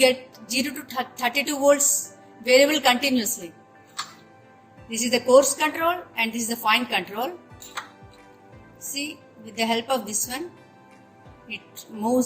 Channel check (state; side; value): identical; both; correlation 1.00